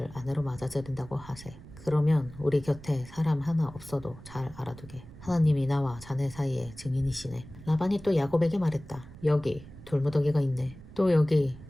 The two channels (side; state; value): right; noise; rumble, 17 dB below the sound